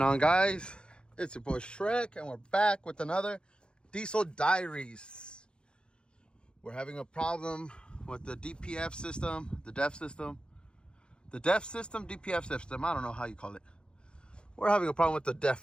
on, guys? It's your boy Shrek, and we're back with another diesel diaries. We're having a problem with the DPF system, the DEF system, DPF system. I don't know how you call it. We're having a problem with the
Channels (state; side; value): late; right; 0.052 ms